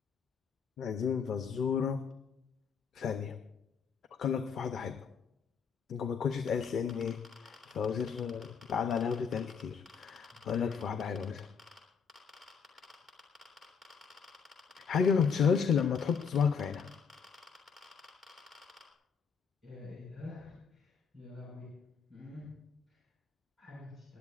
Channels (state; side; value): quieter; right; 6.3 dB